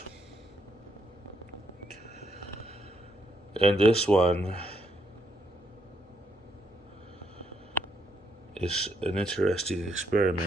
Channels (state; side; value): normal; both; correlation 0.74